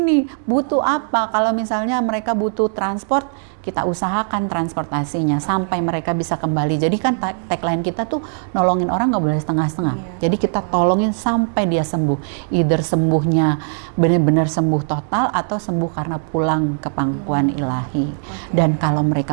Butuh apa? Kalau misalnya mereka butuh transport, kita usahakan transportasinya sampai mereka bisa kembali. Jadi kan tagline kita tuh nolongin orang nggak boleh setengah-setengah. Jadi kita tolongin sampai dia sembuh. Either sembuhnya benar-benar sembuh total atau sembuh karena pulang ke pangkuan ilahi. Dan kalau mereka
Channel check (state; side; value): silent; left; digital silence